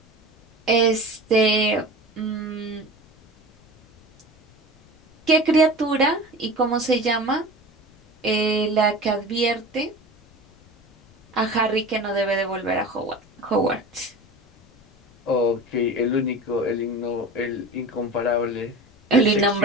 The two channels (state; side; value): noise; left; rumble, 29 dB below the sound